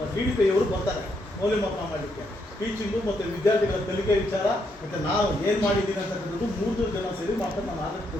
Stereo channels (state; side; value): normal; both; correlation 0.77